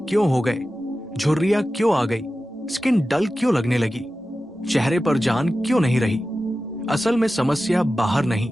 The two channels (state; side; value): normal; both; correlation 0.94